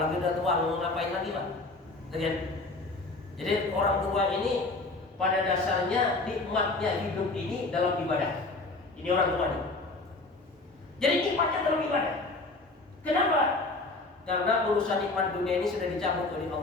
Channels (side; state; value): right; quieter; 3.3 dB